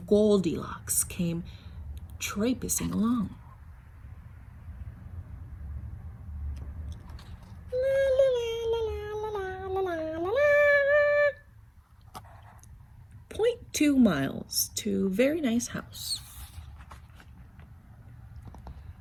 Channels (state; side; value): identical; both; correlation 1.00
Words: Goldilocks came traipsing along. La, la, la, la, 2 miles to a very nice house.